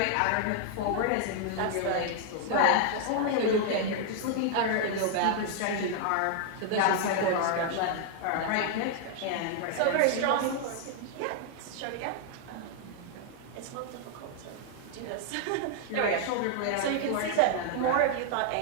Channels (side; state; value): both; different; correlation 0.00